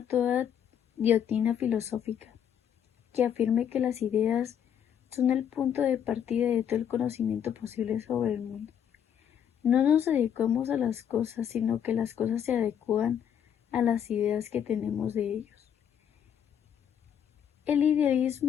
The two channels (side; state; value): right; quieter; 8.9 dB